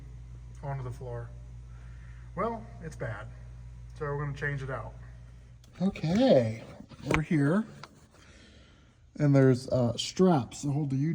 onto the floor? Well, it's bad. So we're going to change it out. Okay, we're here. And there's straps that hold the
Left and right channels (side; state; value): both; identical; correlation 1.00